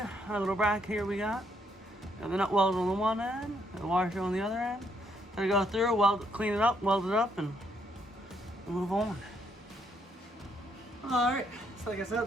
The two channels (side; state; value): both; normal; correlation 0.73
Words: little bracket here we got. Got the nut weld on the one end, and the washer on the other end. Gonna go through, clean it up, weld it up, and move on. Alright, so like I said,